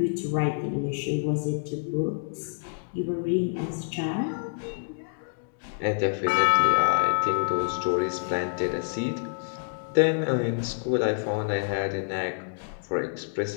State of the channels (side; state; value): right; silent; digital silence